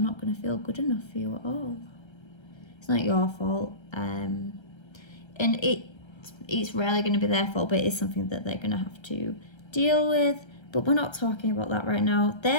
going to feel good enough for you at all. It's not your fault, and it's rarely going to be their fault, but it's something that they're going to have to deal with. But we're not talking about that right now.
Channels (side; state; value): right; late; 1.3 ms